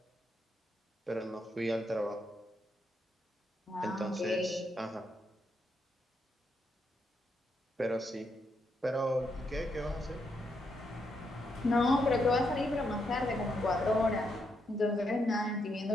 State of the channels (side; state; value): both; normal; correlation 0.79